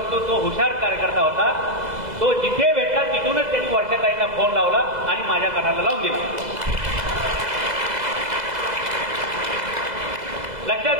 तो हुशार कार्यकर्ता होता. तो जिथे भेटला तिथूनच त्यांनी वर्षाताईंना फोन लावला आणि माझ्या कानाला लावून दिला. लक्षात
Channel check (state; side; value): late; left; 2.0 ms